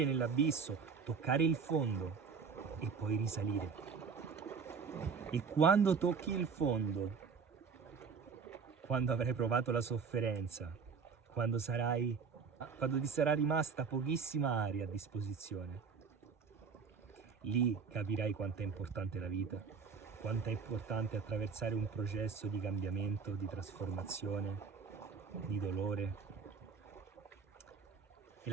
nell'abisso, toccare il fondo e poi risalire. E quando tocchi il fondo, quando avrai provato la sofferenza, quando ti sarà rimasta pochissima aria a disposizione, lì capirai quanto è importante la vita, quanto è importante attraversare un processo di cambiamento, di trasformazione, di dolore. E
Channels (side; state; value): left; quieter; 5.7 dB